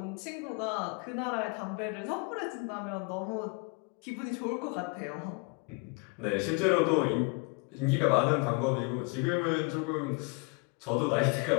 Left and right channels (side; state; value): right; quieter; 30.7 dB